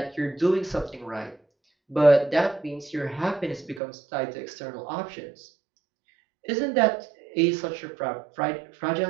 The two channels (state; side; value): drops out; left; at 3.8 s